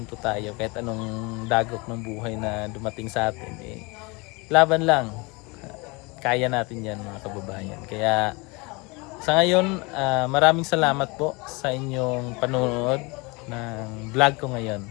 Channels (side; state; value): right; quieter; 27.1 dB